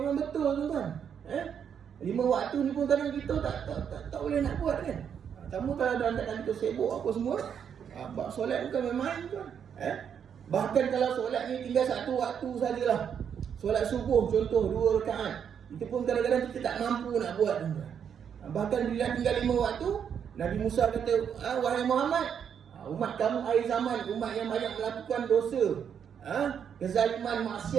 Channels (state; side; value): quieter; left; 7.9 dB